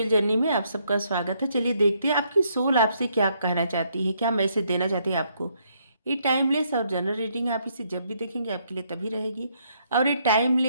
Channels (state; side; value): inverted; both; correlation -0.72